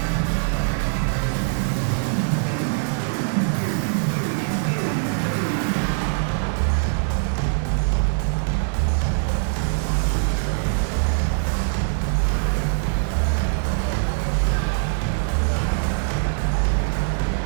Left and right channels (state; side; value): silent; left; digital silence